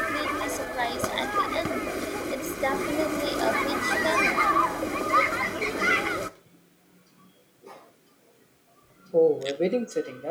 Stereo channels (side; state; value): both; identical; correlation 1.00